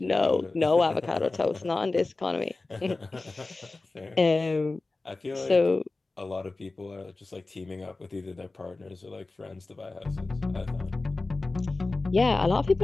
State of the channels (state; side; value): quieter; right; 3.4 dB